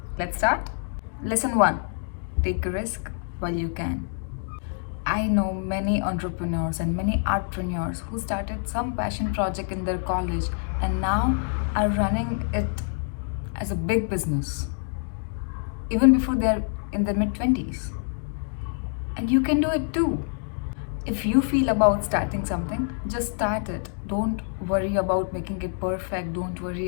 Let's start. Lesson 1. Take a risk while you can. I know many entrepreneurs and many artpreneurs who started some passion project in their college and now are running it as a big business, even before they're in their mid-20s. And you can do it too. If you feel about starting something, just start it. Don't worry about making it perfect. Don't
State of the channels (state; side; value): silent; right; digital silence